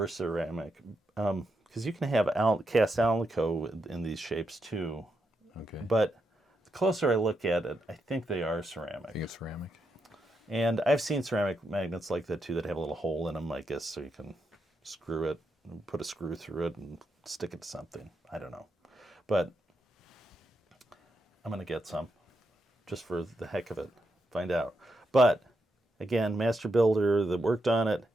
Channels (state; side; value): normal; both; correlation 0.83